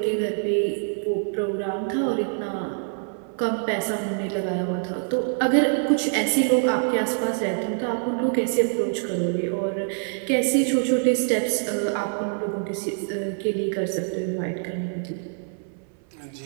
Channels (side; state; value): left; silent; 61 dB below the other